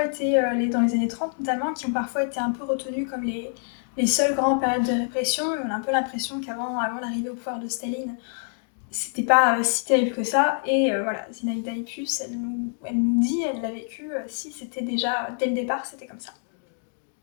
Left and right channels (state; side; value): silent; right; 61 dB below the other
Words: été, dans les années 30 notamment, qui ont parfois été un peu retenues comme les seules grandes périodes de répression. On a un peu l'impression qu'avant l'arrivée au pouvoir de Staline, c'était pas si terrible que ça. Et voilà, Zinaïda Ipus, elle nous dit, elle l'a vécu, si c'était déjà, dès le départ, c'était comme ça.